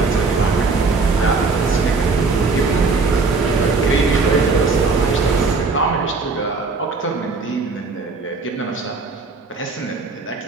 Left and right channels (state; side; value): quieter; left; 4.1 dB